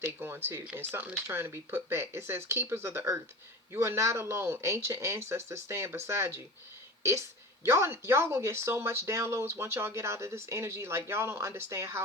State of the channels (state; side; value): normal; both; correlation 0.34